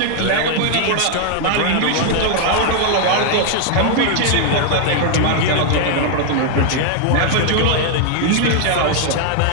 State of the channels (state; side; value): different; both; correlation 0.00